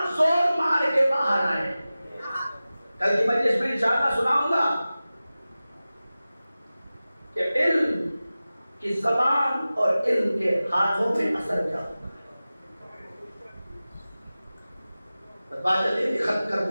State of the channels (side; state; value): both; inverted; correlation -0.96